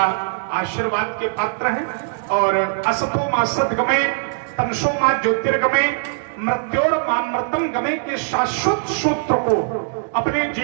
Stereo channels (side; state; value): left; silent; digital silence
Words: आशीर्वाद के पात्र हैं। और असतो मा सद्गमय, तमसो मा ज्योतिर्गमय, मृत्योर मामृतम गमय के शाश्वत सूत्र को अपने